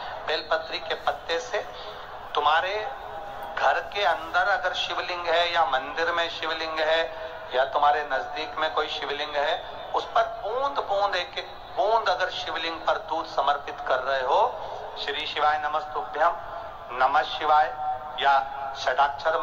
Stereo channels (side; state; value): both; identical; correlation 1.00